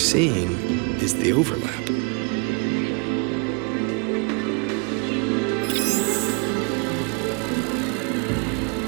is the overlap.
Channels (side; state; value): left; quieter; 33.9 dB